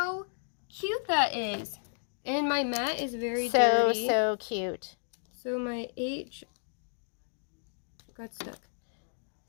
cute that is. And my mat is very dirty. So cute. So my H got stuck.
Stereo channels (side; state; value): right; silent; digital silence